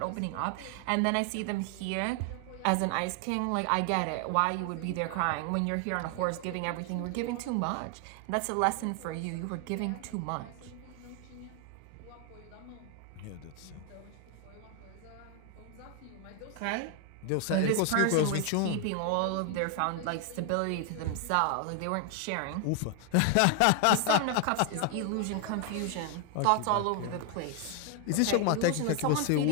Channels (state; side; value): different; both; correlation 0.00